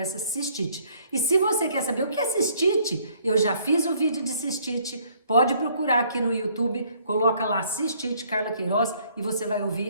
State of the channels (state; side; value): inverted; both; correlation -0.62